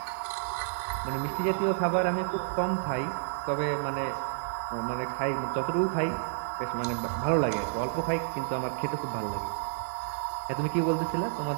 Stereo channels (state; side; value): silent; left; digital silence